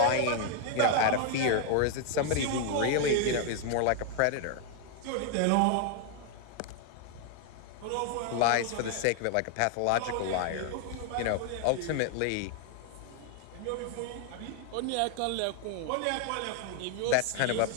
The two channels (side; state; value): both; different; correlation 0.00